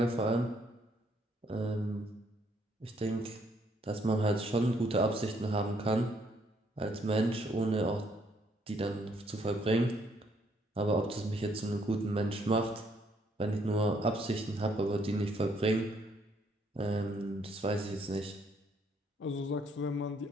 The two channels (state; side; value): normal; both; correlation 0.69